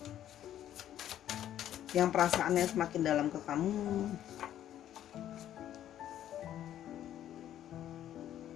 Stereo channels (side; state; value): right; quieter; 11.4 dB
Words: yang perasaannya semakin dalam ke kamu.